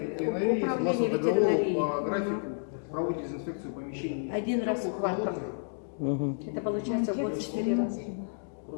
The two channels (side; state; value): right; silent; digital silence